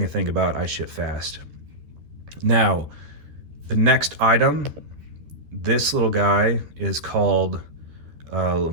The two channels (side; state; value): left; late; 13 ms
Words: to think about. I ship fast. Now, the next item, this little guy is called a